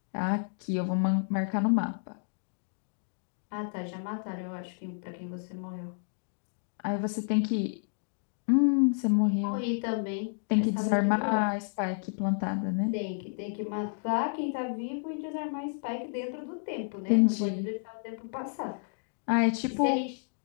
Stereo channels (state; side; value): silent; right; digital silence